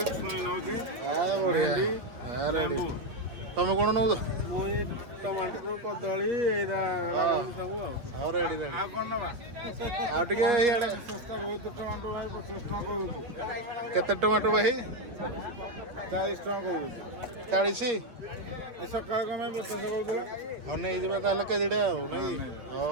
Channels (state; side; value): late; left; 8.7 ms